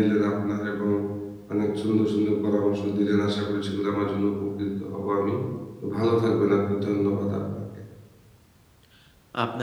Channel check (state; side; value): identical; both; correlation 1.00